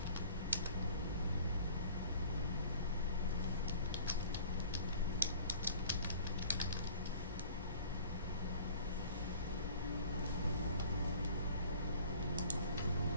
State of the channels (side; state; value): both; inverted; correlation -0.49